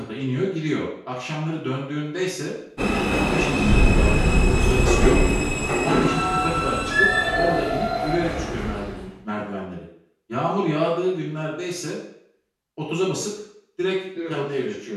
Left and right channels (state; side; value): identical; both; correlation 1.00